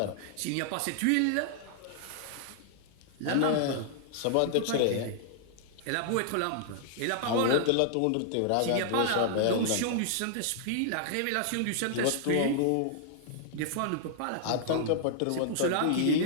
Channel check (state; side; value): different; both; correlation -0.01